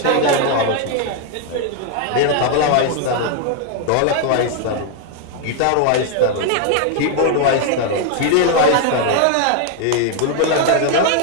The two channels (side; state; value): both; different; correlation 0.00